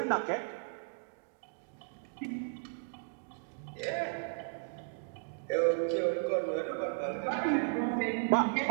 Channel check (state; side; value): silent; left; digital silence